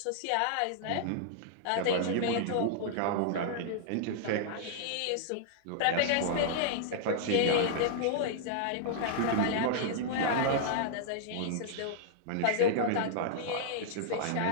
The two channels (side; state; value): both; different; correlation -0.01